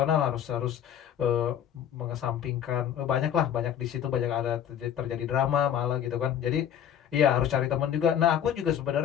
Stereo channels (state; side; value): quieter; right; 9.6 dB